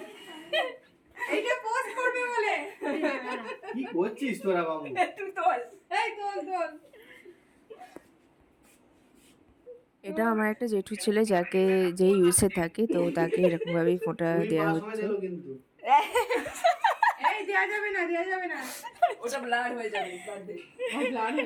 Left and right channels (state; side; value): identical; both; correlation 1.00